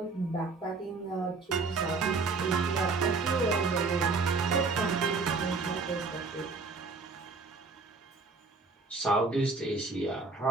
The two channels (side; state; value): left; quieter; 4.1 dB